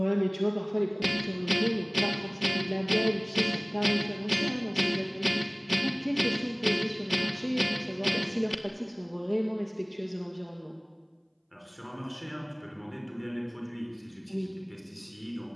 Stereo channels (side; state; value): both; identical; correlation 1.00